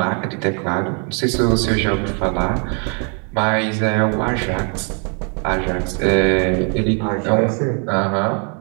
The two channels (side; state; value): left; quieter; 38.1 dB